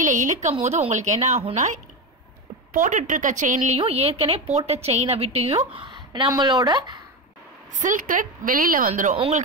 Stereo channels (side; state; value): both; normal; correlation 0.17